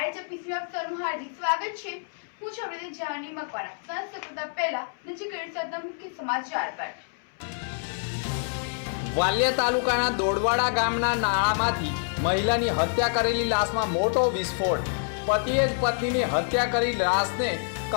એપિસોડ આપ સૌનું હાર્દિક સ્વાગત છે। હું છું આપણે જાની મકવાણા। સંત કરતા પહેલા નજીક સાથે મુખ્ય સમાચાર પર। વાલિયા તાલુકાના દોડવાડા ગામના નાળામાંથી મહિલાની હત્યા કરેલી લાશમાં મોટો વિસ્ફોટ। પતિએ જ પત્નીની હત્યા કરી લાશને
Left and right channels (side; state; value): right; silent; 60 dB below the other